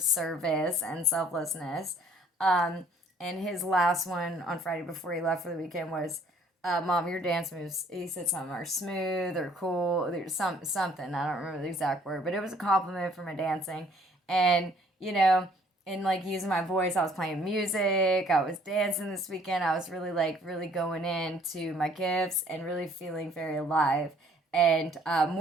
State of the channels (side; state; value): both; normal; correlation 0.60